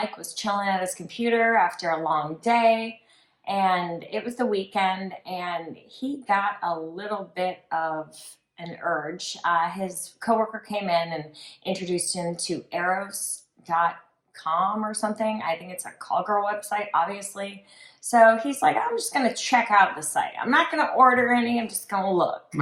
was chilling at his computer after a long day, And it was the weekend, and he got a little bit of an urge. His coworker came in and introduced him to eros.com or something. I think it's a call girl website, obviously. So he's like, I'm just going to check out the site. I'm not going to order any. I'm just going to look. I'm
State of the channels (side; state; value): both; identical; correlation 1.00